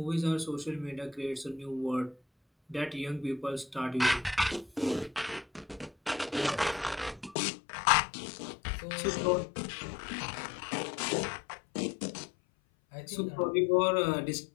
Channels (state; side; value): drops out; right; at 7.4 s